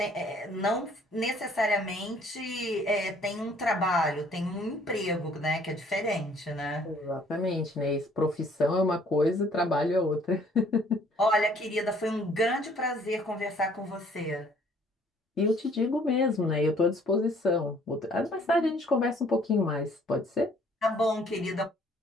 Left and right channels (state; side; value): normal; both; correlation 0.59